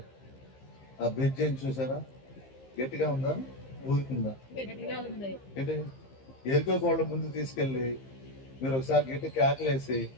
ఆ బ్రిడ్జిని చూసారా? గట్టిగా ఉందా? ఊరుకుందా? ఎరుకో కోళ్ళ ముందు తీసుకెళ్ళి మీరు ఒకసారి గట్టి కేకలేసి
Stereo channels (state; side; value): late; right; 15 ms